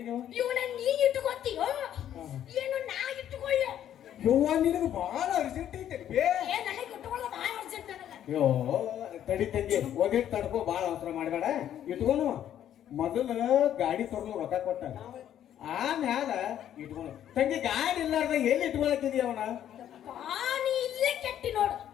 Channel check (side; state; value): right; quieter; 10.7 dB